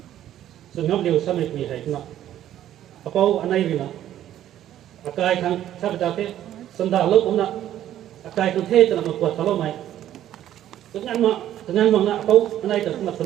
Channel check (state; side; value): quieter; left; 11.9 dB